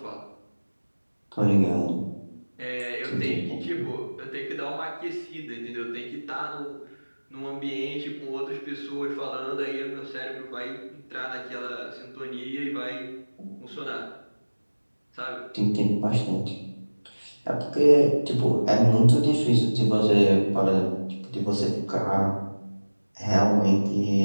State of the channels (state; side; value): inverted; both; correlation -1.00